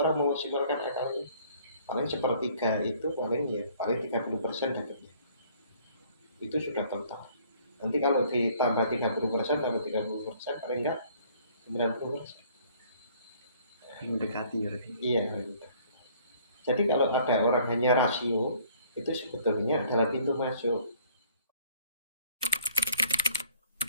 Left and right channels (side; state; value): both; inverted; correlation -0.58